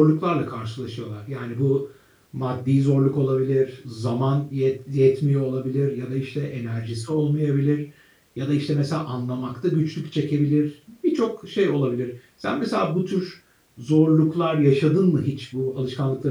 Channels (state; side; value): identical; both; correlation 1.00